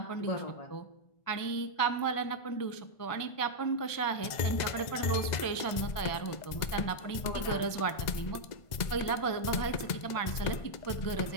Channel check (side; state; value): right; late; 1.5 ms